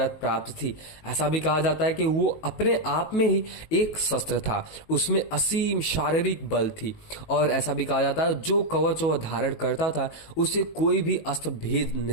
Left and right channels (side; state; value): right; late; 19 ms